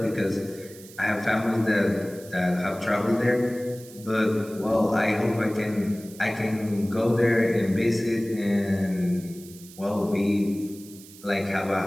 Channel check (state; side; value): noise; right; hiss, 20 dB below the sound